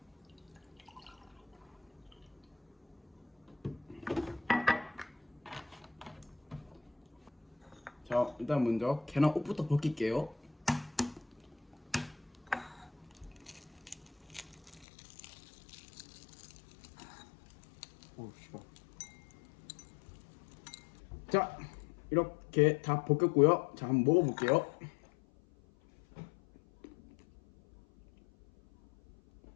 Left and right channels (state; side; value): drops out; right; at 14.9 s